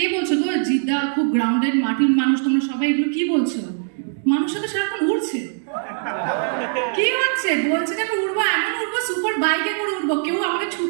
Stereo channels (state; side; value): silent; left; digital silence